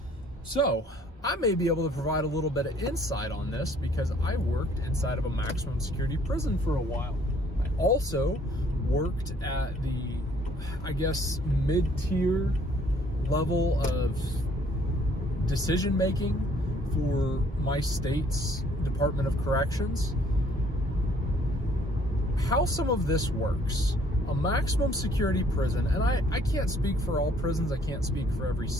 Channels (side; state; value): both; normal; correlation 0.61